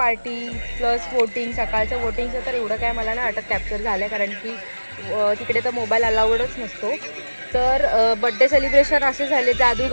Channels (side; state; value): both; inverted; correlation -1.00